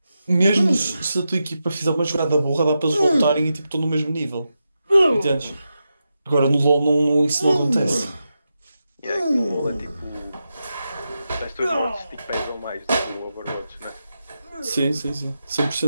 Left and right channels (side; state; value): both; inverted; correlation -0.89